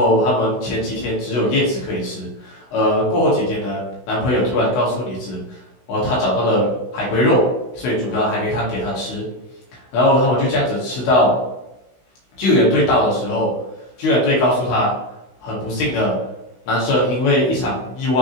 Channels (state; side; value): late; right; 16 ms